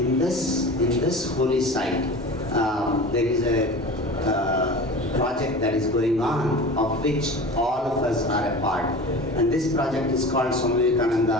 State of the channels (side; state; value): both; normal; correlation 0.35